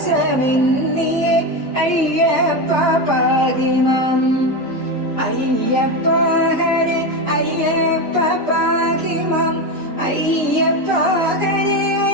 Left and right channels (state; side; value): normal; both; correlation 0.16